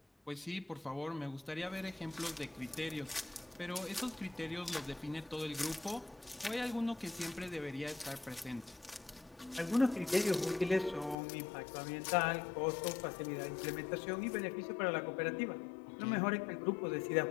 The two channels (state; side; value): drops out; right; at 11.2 s